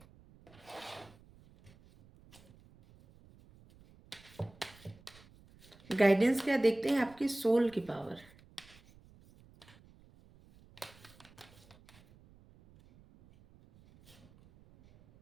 गाइडेंस क्या देखते हैं, आपकी सोल की पावर।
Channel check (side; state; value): right; noise; rumble, 25 dB below the sound